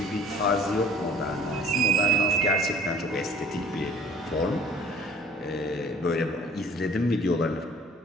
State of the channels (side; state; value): both; normal; correlation 0.51